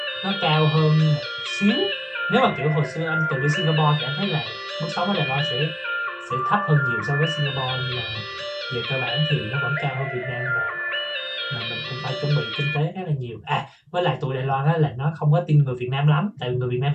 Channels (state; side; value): identical; both; correlation 1.00